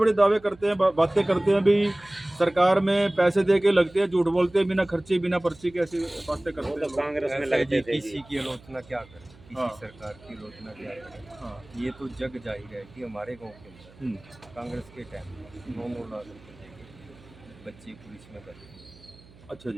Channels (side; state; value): right; noise; hum, 24 dB below the sound